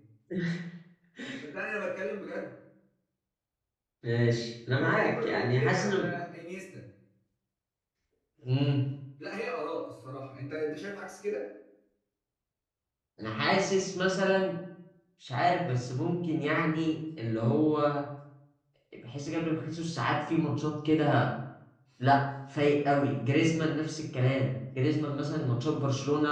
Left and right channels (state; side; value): identical; both; correlation 1.00